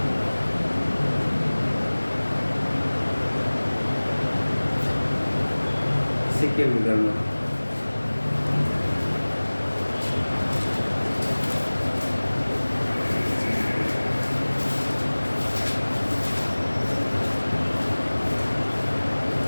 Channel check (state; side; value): inverted; both; correlation -1.00